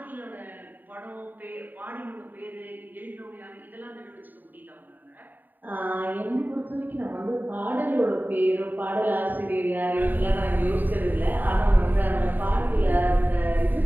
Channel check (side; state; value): left; late; 0.089 ms